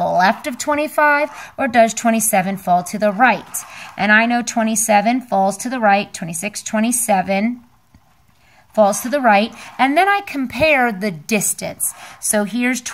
of 25, or does 27 fall to the right? And I know 27 falls to the right, 26, 27 falls to the right, and then I compare the distance. So here's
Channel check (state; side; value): identical; both; correlation 1.00